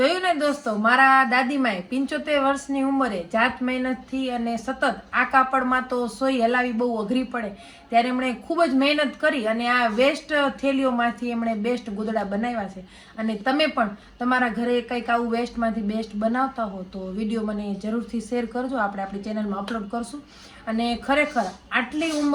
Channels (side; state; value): both; identical; correlation 1.00